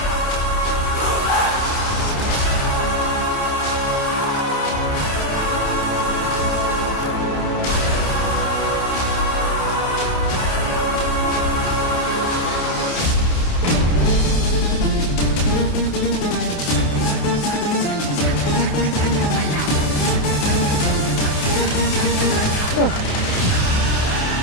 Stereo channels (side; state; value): right; late; 28 ms